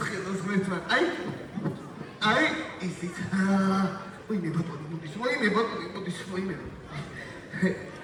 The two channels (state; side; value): identical; both; correlation 1.00